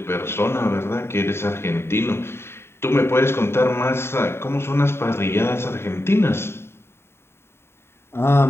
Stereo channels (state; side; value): late; right; 0.12 ms